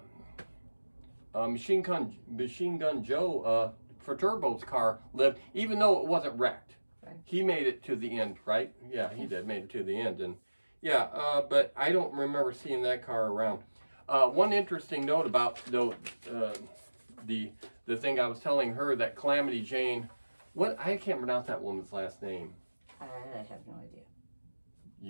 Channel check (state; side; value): inverted; both; correlation -1.00